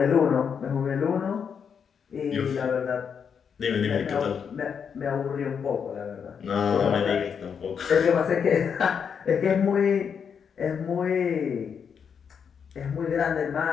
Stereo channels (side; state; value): right; quieter; 7.0 dB